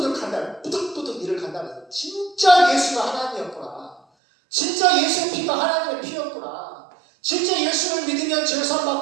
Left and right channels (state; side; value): drops out; left; at 4.0 s